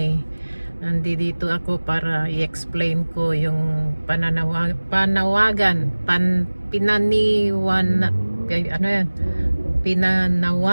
nandito ako para i-explain ko yung pinanawagan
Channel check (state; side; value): inverted; both; correlation -1.00